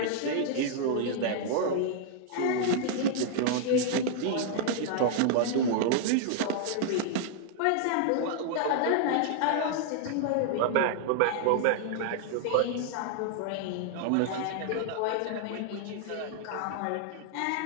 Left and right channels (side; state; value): both; different; correlation 0.00